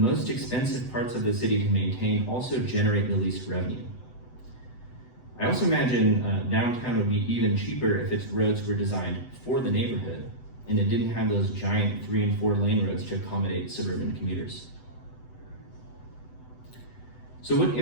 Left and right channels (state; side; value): late; right; 8.0 ms